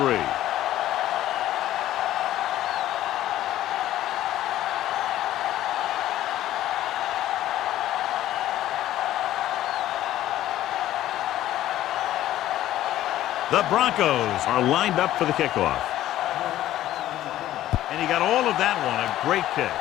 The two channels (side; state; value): right; quieter; 13.6 dB